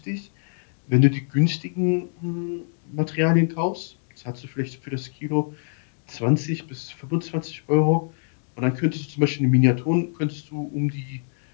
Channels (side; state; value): right; silent; digital silence